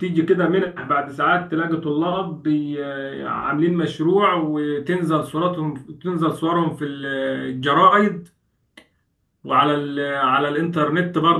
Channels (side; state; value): both; identical; correlation 1.00